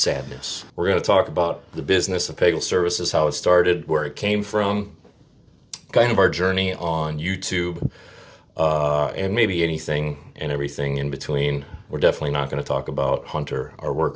We're going to talk about the business of Pagel Services, how it started, where it came from, kind of our journey on YouTube, and maybe anything and everything in between. We're definitely not going to talk about Hunter, our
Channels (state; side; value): identical; both; correlation 1.00